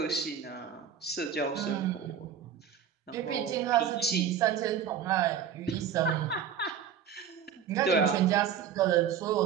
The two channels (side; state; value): left; quieter; 8.1 dB